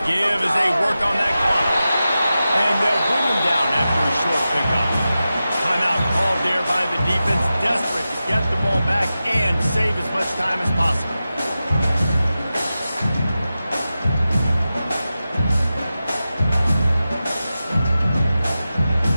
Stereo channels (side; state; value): both; inverted; correlation -0.93